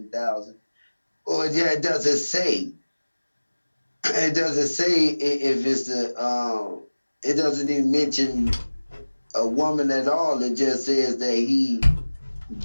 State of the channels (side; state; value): both; inverted; correlation -1.00